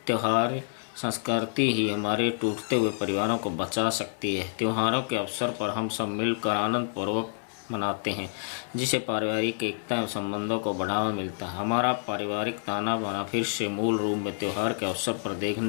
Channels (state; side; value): silent; right; digital silence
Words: त्योहार संस्कृति ही हमारे टूटते हुए परिवारों को बचा सकती है। त्योहारों के अवसर पर हम सब मिलकर आनंद पूर्वक मनाते हैं, जिससे पारिवारिक एकता एवं संबंधों को बढ़ावा मिलता है। हमारा पारिवारिक ताना बाना फिर से मूल रूप में त्योहार के अवसर पर